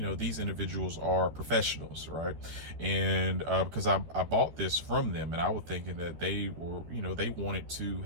these individuals are professionals, right? And because I bought this from them and I was thinking that they were, they wanted to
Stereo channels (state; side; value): late; left; 13 ms